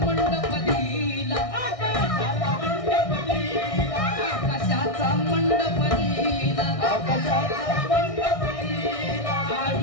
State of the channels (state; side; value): late; right; 1.6 ms